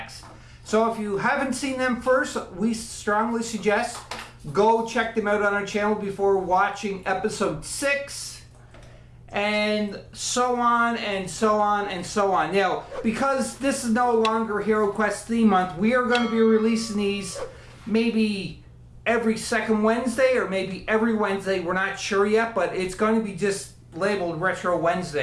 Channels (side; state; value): both; identical; correlation 1.00